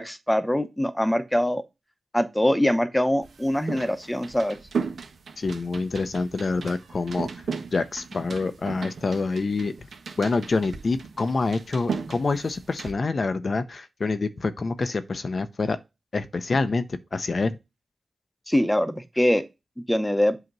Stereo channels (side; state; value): both; normal; correlation 0.96